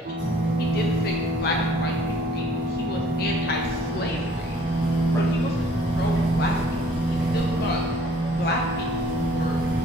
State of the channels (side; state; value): both; normal; correlation 0.57